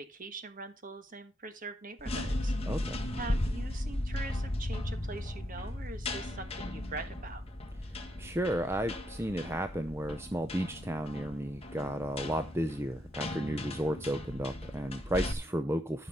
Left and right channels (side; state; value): both; normal; correlation 0.79